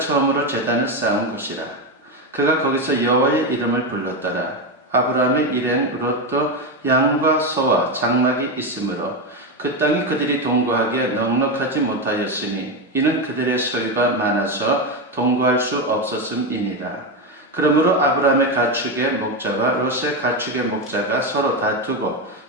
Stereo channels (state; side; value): normal; both; correlation 0.11